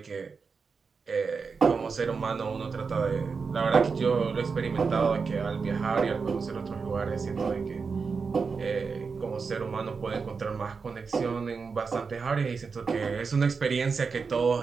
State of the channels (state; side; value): quieter; left; 5.1 dB